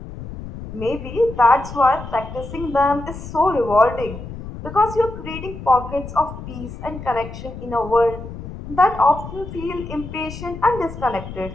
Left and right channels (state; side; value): noise; left; rumble, 11 dB below the sound